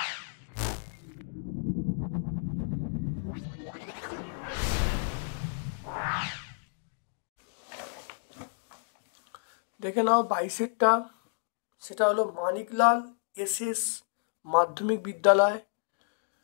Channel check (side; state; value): right; silent; digital silence